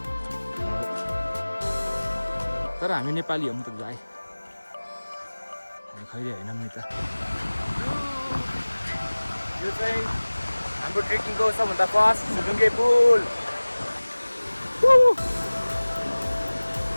तर हामी नेपाली हौँ त भाइ हामी खैरे होइनौँ नि त यो चाहिँ हाम्रो ट्रेकिङको सबभन्दा फर्स्ट झुलुङ्गे पुल।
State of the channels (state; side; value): inverted; both; correlation -1.00